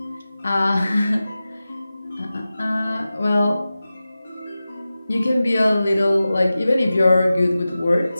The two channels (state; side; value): inverted; both; correlation -0.95